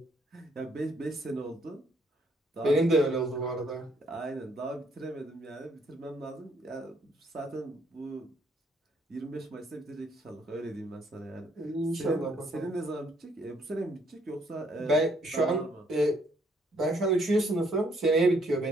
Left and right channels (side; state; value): both; normal; correlation 0.68